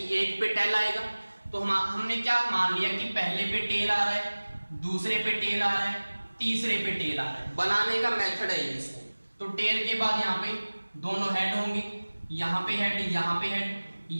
एक पे टेल आएगा, तो हमने क्या मान लिया कि पहले पे टेल आ रहा है, दूसरे पे टेल आ रहा है, तीसरे पे टेल आ रहा है। बनाने का मेथड है इसको। तो टेल के बाद यहाँ पे दोनों हेड होंगे, यहाँ पे हेड, यहाँ पे हेड,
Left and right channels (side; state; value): both; inverted; correlation -1.00